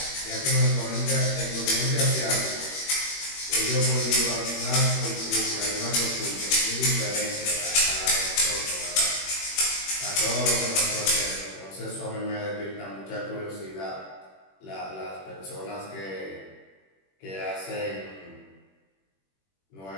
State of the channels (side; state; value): right; late; 21 ms